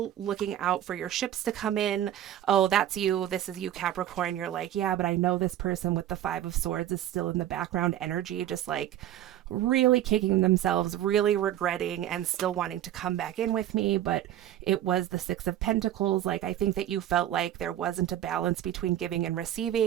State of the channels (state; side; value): quieter; left; 12.0 dB